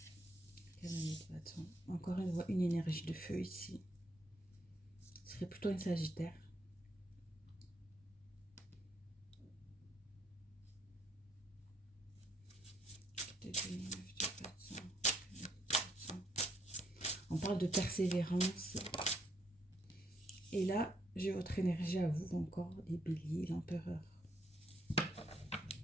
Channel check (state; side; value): normal; both; correlation 0.72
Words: Cavalier de bâton. Encore une énergie de feu ici. Ce serait plutôt une Sagittaire. On parle de persévérance. Et là, j'ai votre énergie à vous encore, les béliers, l'empereur.